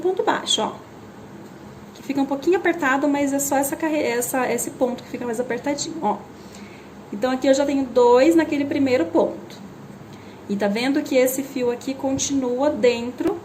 baixo, ó. Que fica um pouquinho apertado, mas é só esse ponto que fica mais apertadinho, ó. Então, aqui eu já tenho 2 naquele primeiro ponto. E tá vendo que esse fio aqui continua dentro,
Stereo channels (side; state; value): both; identical; correlation 1.00